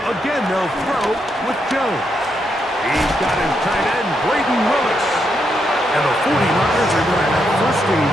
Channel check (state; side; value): normal; both; correlation 0.80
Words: Again, they'll throw with Jones. He's got his tight end, Braden Willis. And the 49ers are going to have 1st and